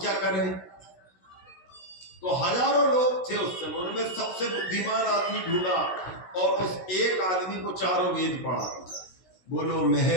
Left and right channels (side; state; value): right; late; 16 ms